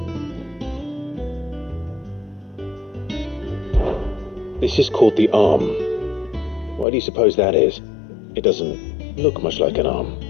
This is called the arm. Why do you suppose that is? It doesn't look much like an arm.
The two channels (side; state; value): right; drops out; at 6.9 s